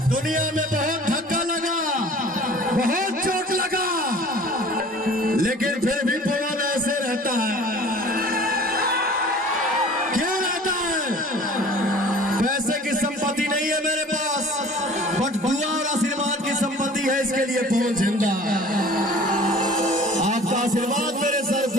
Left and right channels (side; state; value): both; normal; correlation 0.46